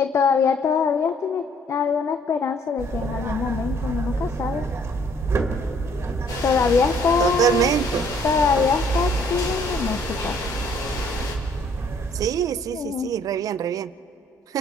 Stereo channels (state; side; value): normal; both; correlation 0.62